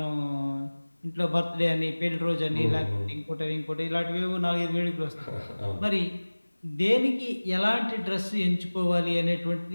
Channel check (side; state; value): both; inverted; correlation -1.00